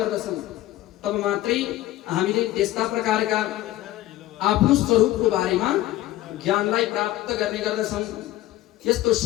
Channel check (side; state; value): right; quieter; 15.2 dB